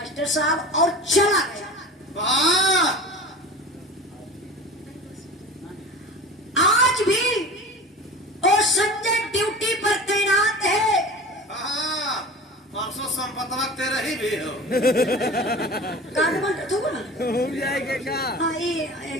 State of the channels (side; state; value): both; normal; correlation 0.36